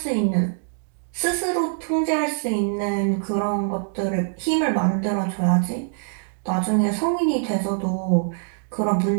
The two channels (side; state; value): left; silent; digital silence